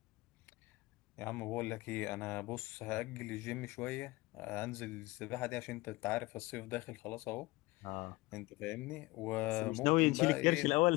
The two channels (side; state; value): right; quieter; 21.6 dB